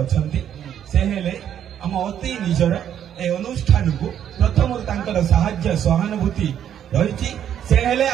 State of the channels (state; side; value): quieter; left; 9.8 dB